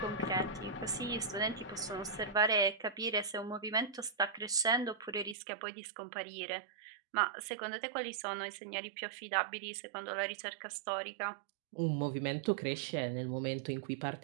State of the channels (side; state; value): left; drops out; at 5.4 s